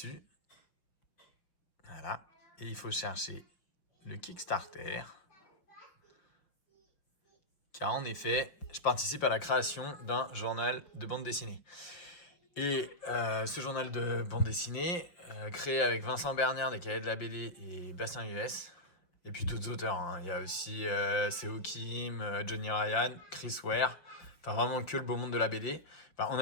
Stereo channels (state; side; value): late; right; 5.9 ms